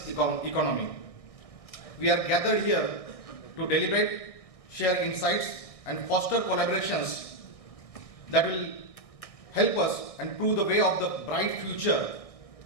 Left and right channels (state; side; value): late; right; 1.6 ms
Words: economy. We are gathered here to deliberate, share insights and foster collaborations that will help us and prove the way of the bright future